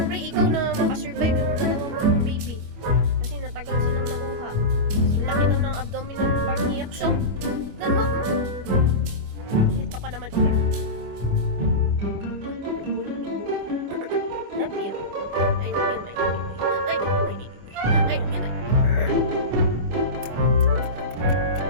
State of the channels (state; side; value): late; left; 25 ms